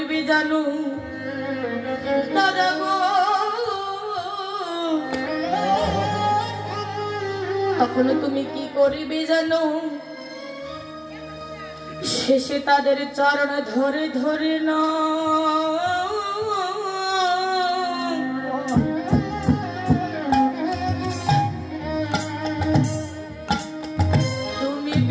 জানো দাদা গো? তখন তুমি কি করবে জানো? শেষে তাদের চরণ ধরে ধরে না তুমি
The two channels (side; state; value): both; identical; correlation 1.00